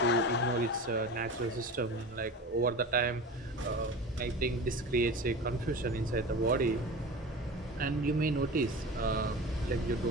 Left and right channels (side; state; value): both; normal; correlation 0.33